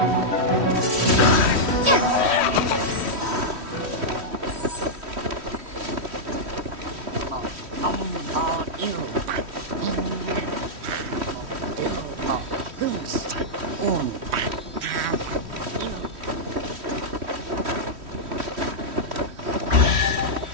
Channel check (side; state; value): left; late; 3.1 ms